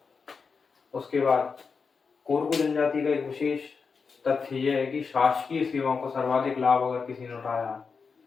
उसके बाद कोरकू जनजाति का एक विशेष तथ्य यह है कि शासकीय सेवाओं का सर्वाधिक लाभ अगर किसी ने उठाया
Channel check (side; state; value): right; quieter; 5.2 dB